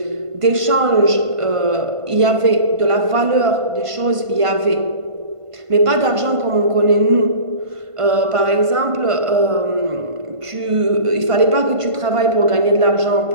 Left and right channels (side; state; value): left; late; 1.5 ms